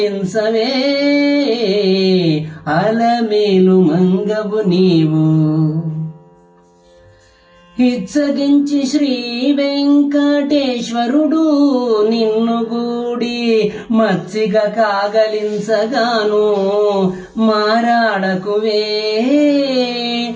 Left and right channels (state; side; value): identical; both; correlation 1.00